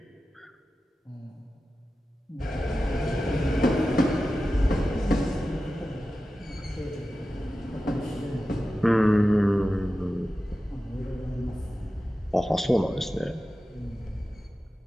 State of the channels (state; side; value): normal; both; correlation 0.94